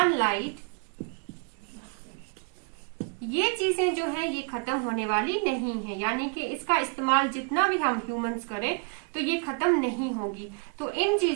ये चीजें जो है ये खत्म होने वाली नहीं है, यानी कि इसका इस्तेमाल जितना भी हम ह्यूमंस करें तो ये खत्म नहीं होगी। तो इन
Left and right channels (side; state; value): left; quieter; 35.7 dB